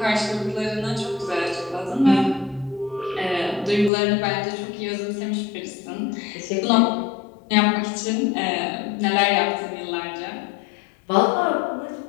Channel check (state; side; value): drops out; right; at 3.9 s